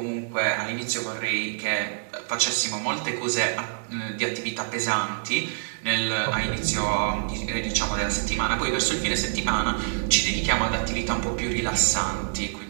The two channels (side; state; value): left; silent; digital silence